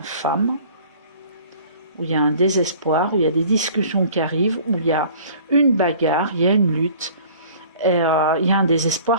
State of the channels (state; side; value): inverted; both; correlation -0.49